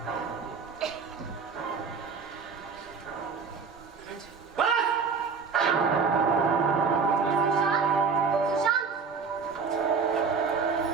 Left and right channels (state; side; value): quieter; left; 5.4 dB